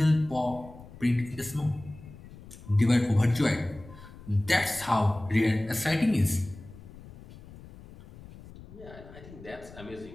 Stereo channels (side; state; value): left; noise; rumble, 18 dB below the sound